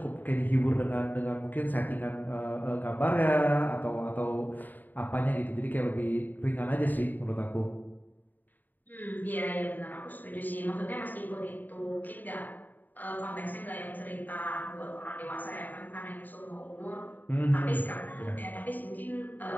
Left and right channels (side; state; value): right; late; 0.087 ms